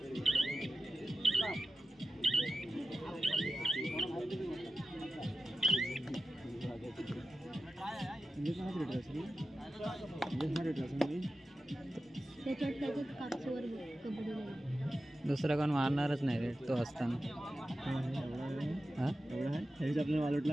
त्याच्यात कापसावर कबड्डी लागली. दुसरा कोण मारणारच नाही रे तो असताना. हा आपल्याला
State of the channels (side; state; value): both; normal; correlation 0.93